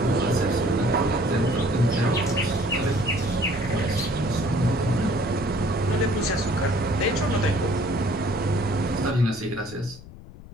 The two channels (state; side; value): noise; left; rumble, 18 dB below the sound